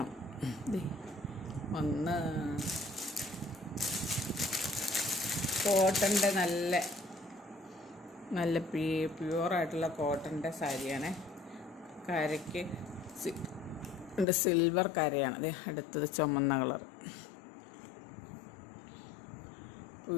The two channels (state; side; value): drops out; right; at 14.2 s